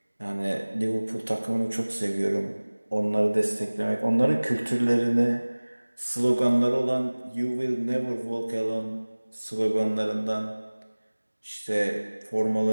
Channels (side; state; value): both; inverted; correlation -1.00